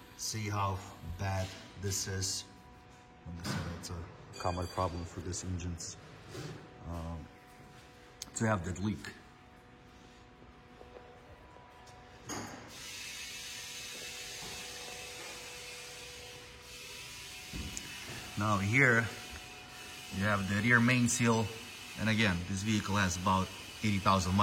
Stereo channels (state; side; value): identical; both; correlation 1.00